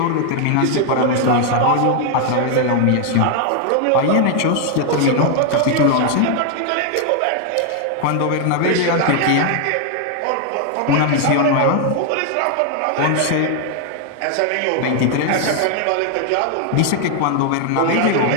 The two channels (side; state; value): both; different; correlation 0.00